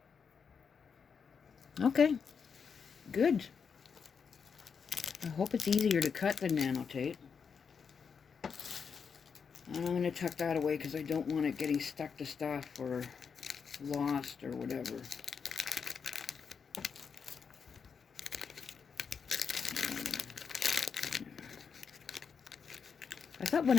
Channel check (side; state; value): right; quieter; 6.2 dB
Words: Okay, good. I hope it's easier to cut than nano tape. And I'm going to tuck that away because I don't want it getting stuck to stuff or lost or whatever. I thought